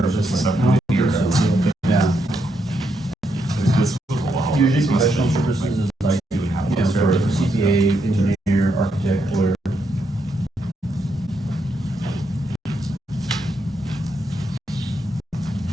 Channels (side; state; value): both; normal; correlation 0.79